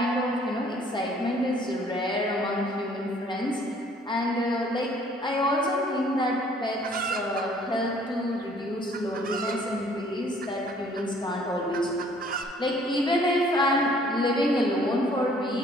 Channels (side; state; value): both; normal; correlation 0.58